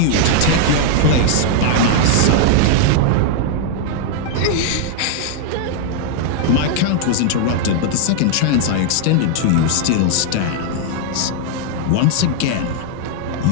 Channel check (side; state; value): both; different; correlation 0.00